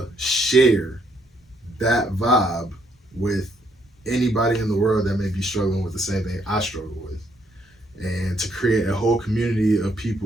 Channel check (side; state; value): both; normal; correlation 0.71